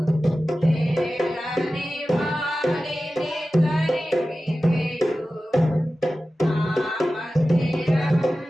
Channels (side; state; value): both; normal; correlation 0.95